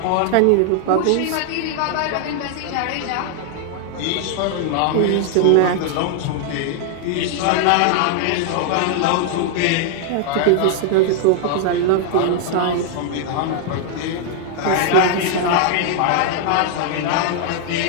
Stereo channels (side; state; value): both; different; correlation 0.00